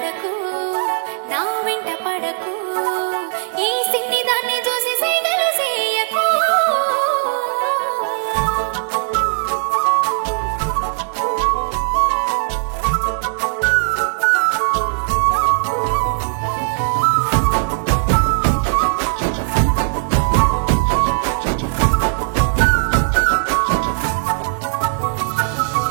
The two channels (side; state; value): left; silent; digital silence